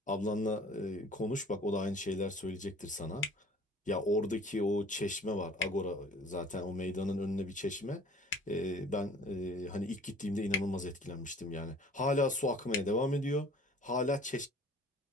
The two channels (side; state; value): both; normal; correlation 0.49